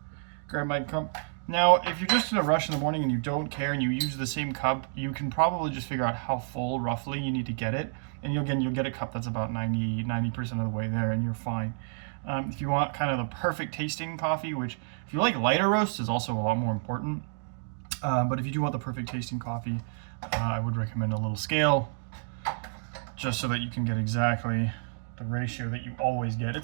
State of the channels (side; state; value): left; silent; digital silence